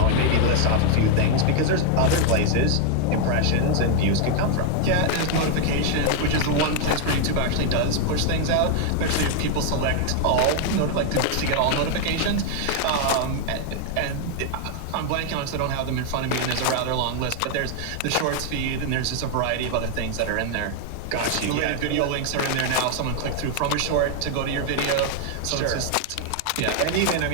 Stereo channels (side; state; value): both; different; correlation 0.00